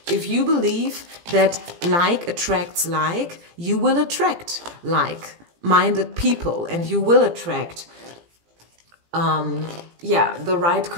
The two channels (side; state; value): left; late; 17 ms